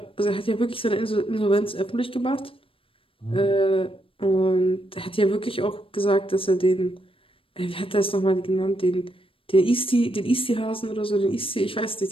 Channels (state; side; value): late; right; 0.26 ms